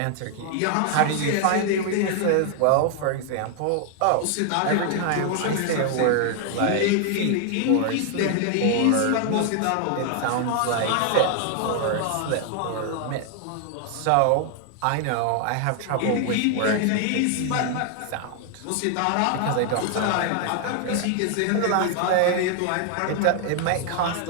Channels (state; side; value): different; both; correlation 0.00